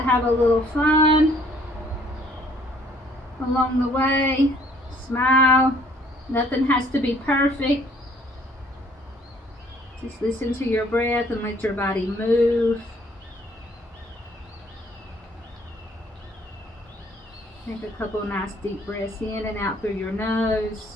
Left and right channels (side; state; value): both; normal; correlation 0.60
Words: have a little fun along the way. Smile. Nothing has to be perfect. Just listen to your breath and let your body move. Take a couple nice deep breaths in and out through your nose.